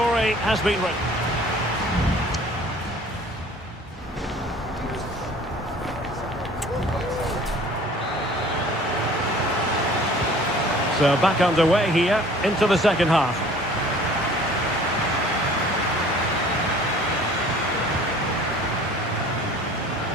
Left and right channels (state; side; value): normal; both; correlation 0.49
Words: has been written. So back underway here into the second half.